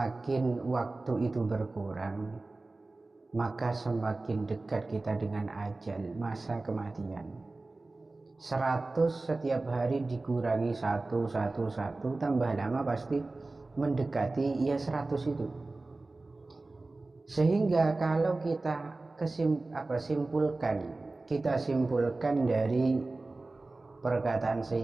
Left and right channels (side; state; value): left; quieter; 3.2 dB